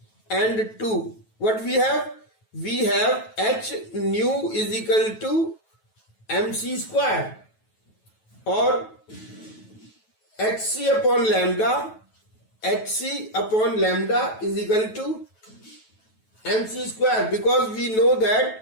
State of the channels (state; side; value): late; right; 9.2 ms